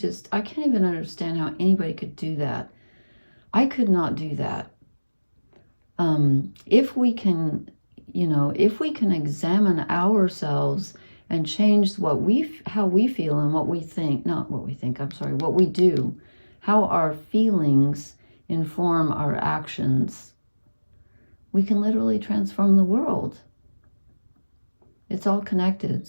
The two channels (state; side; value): inverted; both; correlation -1.00